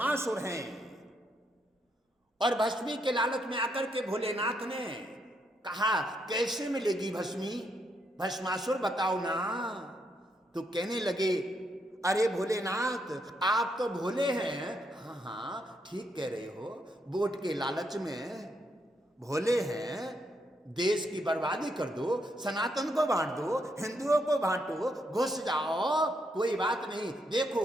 हैं, और भस्मी के लालच में आकर के भोलेनाथ ने कहा कैसे मिलेगी भस्मी, भस्मासुर बताओ ना। तो कहने लगे अरे भोलेनाथ आप तो भोले हैं। हाँ हाँ ठीक कह रहे हो, वोट के लालच में भोले हैं, देश की बर्बादी कर दो, सनातन को बांट दो, हिंदुओं को बांटो, घुस जाओ, कोई बात नहीं।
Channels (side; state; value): both; normal; correlation 0.77